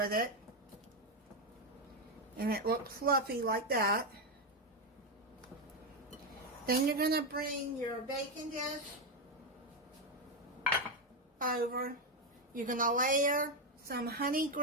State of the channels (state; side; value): normal; both; correlation 0.07